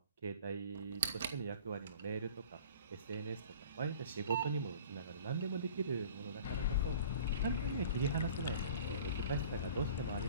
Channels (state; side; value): inverted; both; correlation -0.45